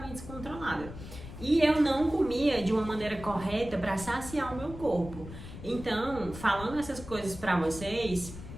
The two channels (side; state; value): left; noise; rumble, 13 dB below the sound